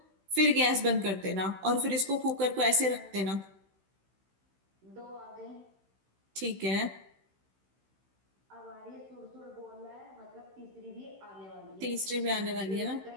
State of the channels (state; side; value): late; left; 16 ms